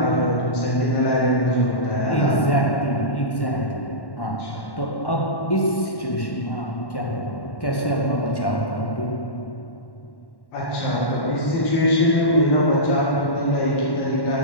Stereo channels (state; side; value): late; right; 1.1 ms